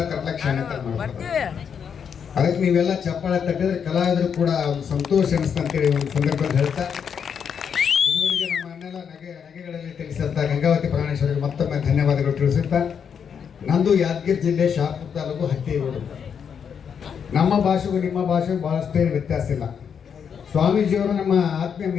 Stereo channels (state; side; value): quieter; right; 7.3 dB